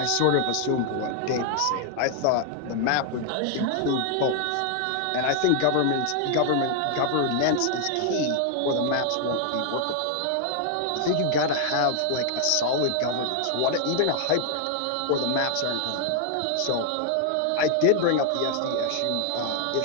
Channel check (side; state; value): both; different; correlation 0.00